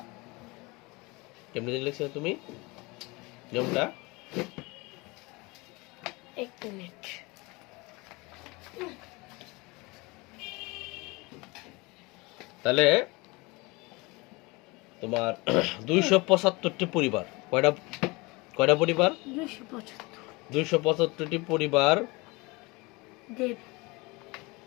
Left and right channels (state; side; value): quieter; right; 25.0 dB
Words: কেমনি লিখছো তুমি নিয়মটা? এক মিনিট। তাহলে তোমার 275টি পরিবার, কয়টা পরিবার? 275টি পরিবার